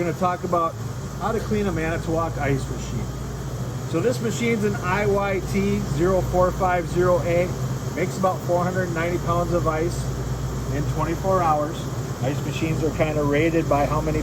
to talk about how to clean a Manitowoc Ice Machine. So this machine's an IYT 0450A, makes about 490 pounds of ice in 24 hours. Ice machines are kind of rated by how many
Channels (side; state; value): both; identical; correlation 1.00